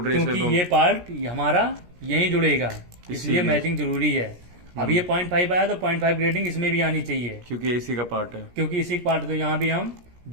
रही है, क्योंकि इसलिए ये पार्ट हमारा यहीं जुड़ेगा, इसलिए इसीलिए। मैचिंग जरूरी है। अब ये 0.5 आया तो 0.5 ग्रेडिंग इसमें भी आनी चाहिए, क्योंकि ये इसी का पार्ट है। क्योंकि इसी पार्ट, तो यहाँ भी हम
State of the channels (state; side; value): late; left; 17 ms